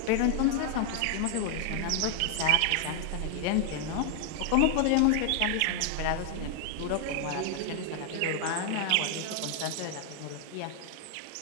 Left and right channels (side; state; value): both; different; correlation 0.00